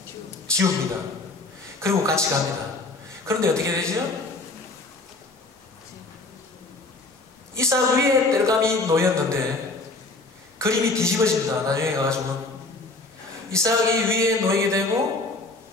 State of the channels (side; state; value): right; quieter; 3.3 dB